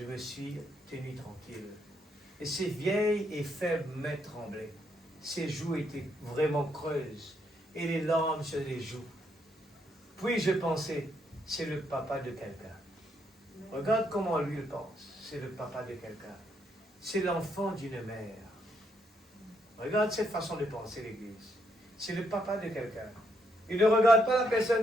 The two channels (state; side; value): normal; both; correlation 0.75